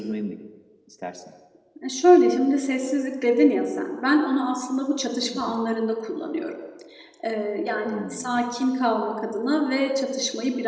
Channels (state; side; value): identical; both; correlation 1.00